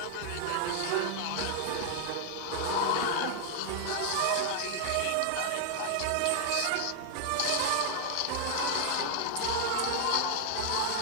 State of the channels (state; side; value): different; both; correlation 0.00